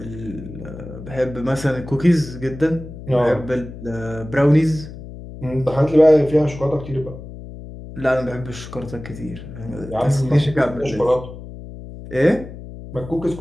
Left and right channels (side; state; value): left; noise; hum, 13 dB below the sound